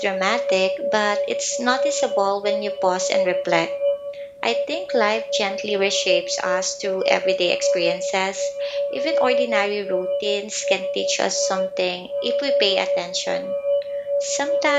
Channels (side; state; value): both; identical; correlation 1.00